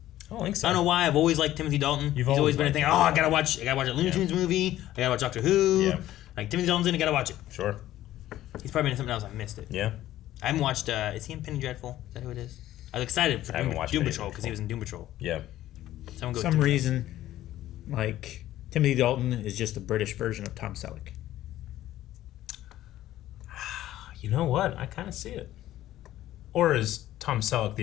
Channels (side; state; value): right; quieter; 13.9 dB